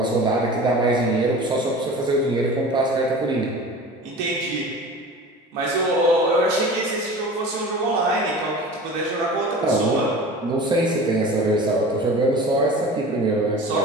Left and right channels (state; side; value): normal; both; correlation 0.37